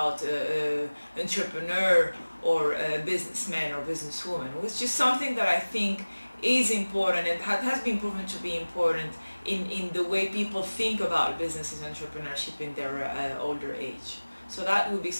entrepreneur or businessman or businesswoman, which is something that I think is important and has been proven to be important in the way people think about business and entrepreneurship in their older age. So that would be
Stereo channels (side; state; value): both; inverted; correlation -1.00